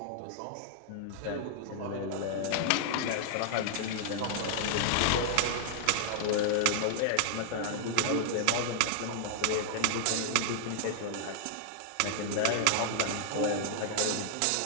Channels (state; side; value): different; both; correlation -0.01